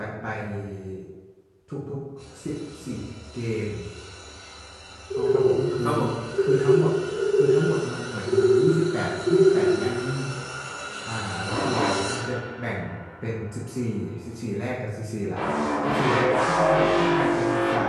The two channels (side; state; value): both; identical; correlation 1.00